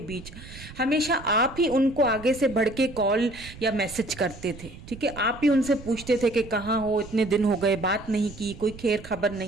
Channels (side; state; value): right; noise; rumble, 16 dB below the sound